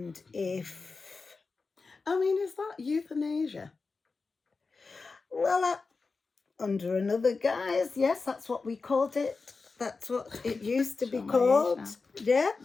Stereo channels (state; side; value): quieter; right; 4.3 dB